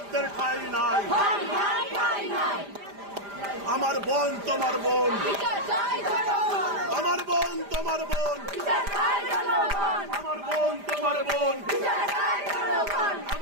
ঠাঁই নাই। ঠাই নাই ঠাই নাই, আমার বোন তোমার বোন, বিচার চাই জনগণ, আমার বোন তোমার বোন, বিচার চাই জনগণ, আমার বোন তোমার বোন, বিচার চাই জনগণ,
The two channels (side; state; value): left; late; 5.0 ms